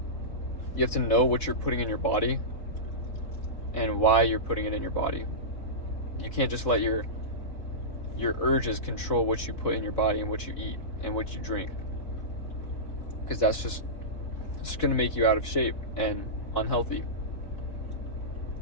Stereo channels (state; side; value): late; right; 4.0 ms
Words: You have to know what you're putting in your body and why you're putting it in your body. You can't just let your urges control what you put in your body and what you eat and what you drink, because that's just going to make you out of shape and unhealthy.